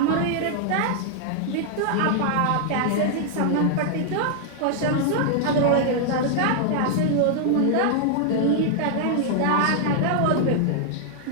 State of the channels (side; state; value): both; different; correlation -0.01